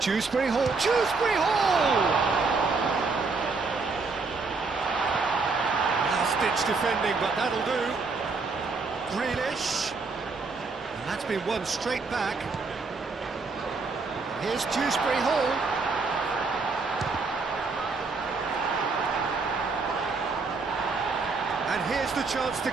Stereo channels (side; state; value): left; quieter; 4.2 dB